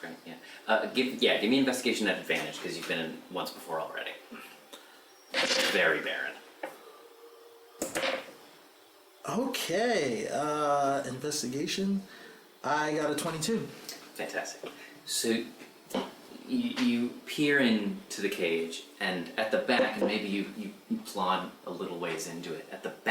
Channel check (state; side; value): identical; both; correlation 1.00